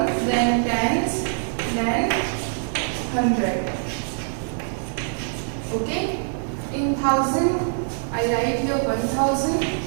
then tens, then 100. Okay. In thousand, I write here 1,000.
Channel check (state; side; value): silent; left; digital silence